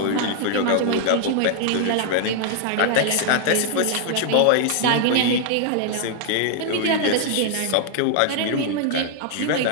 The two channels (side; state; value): both; different; correlation 0.00